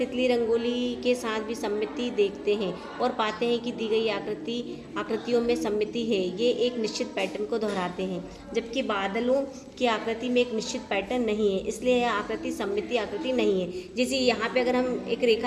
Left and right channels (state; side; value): identical; both; correlation 1.00